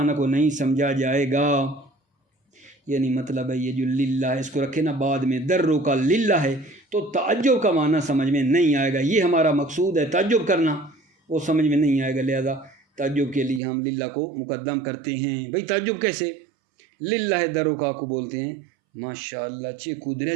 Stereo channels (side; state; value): left; drops out; at 13.6 s